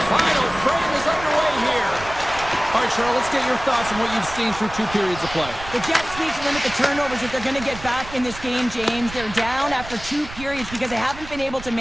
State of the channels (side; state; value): right; noise; rumble, 14 dB below the sound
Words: Final frame is underway here. All right, Cheryl, let's get your thoughts on what you've seen through 2 periods of play. The Jets need to limit the turnovers if they're going to get back in this game, James. They're down after 2 periods because they haven't been able to